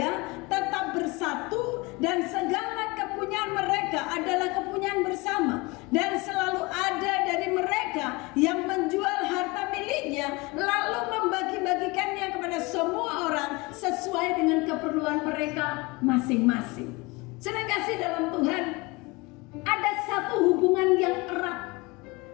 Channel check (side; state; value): right; quieter; 25.0 dB